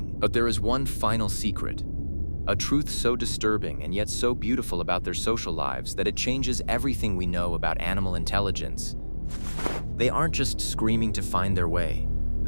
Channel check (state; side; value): inverted; both; correlation -1.00